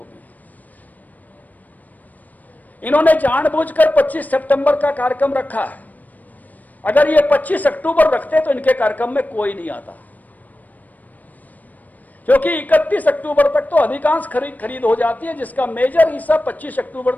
इन्होंने जानबूझकर 25 सितंबर का कार्यक्रम रखा है। अगर ये 25 अक्टूबर रखते तो इनके कार्यक्रम में कोई नहीं आता, क्योंकि 31 अक्टूबर तक तो अधिकांश खरीद हो जाती है, जिसका मेजर हिस्सा 25 अक्टूबर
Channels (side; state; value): right; late; 0.080 ms